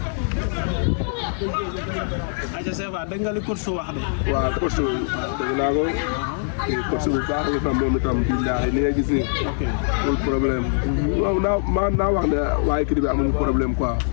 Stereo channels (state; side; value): silent; right; 64 dB below the other